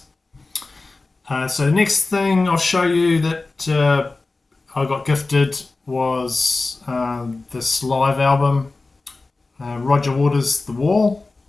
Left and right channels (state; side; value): quieter; right; 3.5 dB